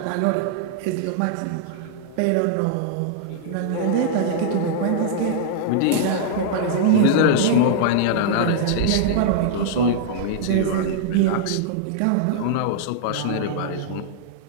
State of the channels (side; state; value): both; different; correlation -0.01